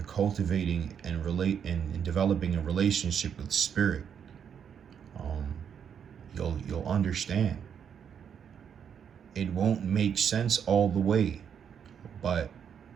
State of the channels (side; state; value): left; quieter; 7.9 dB